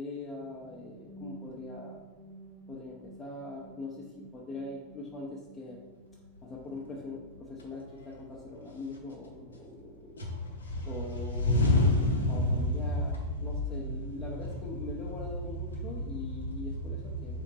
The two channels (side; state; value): both; normal; correlation -0.16